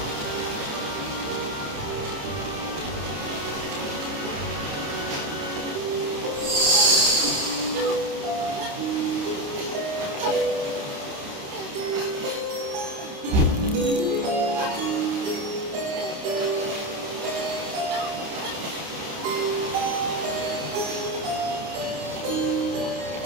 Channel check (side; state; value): left; late; 29 ms